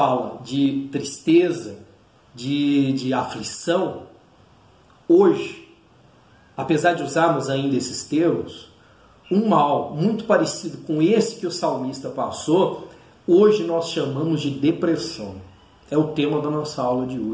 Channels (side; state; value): both; identical; correlation 1.00